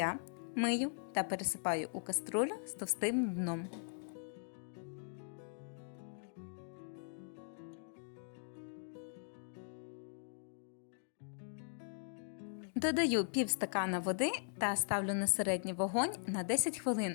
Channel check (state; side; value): silent; right; digital silence